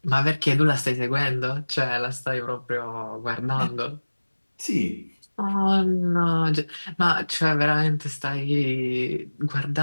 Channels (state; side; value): inverted; both; correlation -1.00